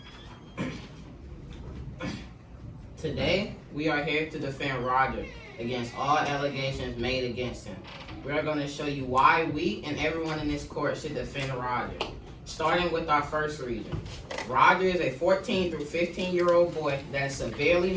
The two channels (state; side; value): identical; both; correlation 1.00